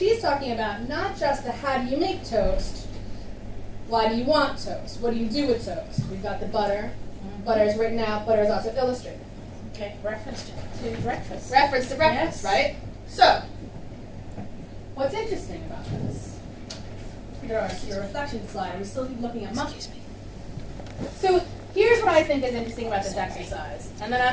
talking about not just the how do you make toast. Why do you want toast? What do you do with toast? We've got the butter. Butter is written out. Butter is also illustrated. Okay, reference to breakfast. Reference to breakfast, yes. right? So, what's interesting about this? Your reflection slide. We still keep looking at monkeys. So, here's what I think is interesting about this exercise. And then I'm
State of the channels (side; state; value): both; identical; correlation 1.00